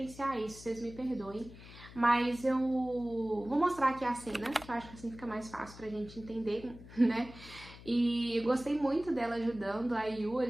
isso, vocês me perdoem. Mas eu vou mostrar aqui a cena, que eu acho que assim fica mais fácil pra gente entender, né? E eu gostei muito dela ajudando a Yu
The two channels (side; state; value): left; noise; hum, 17 dB below the sound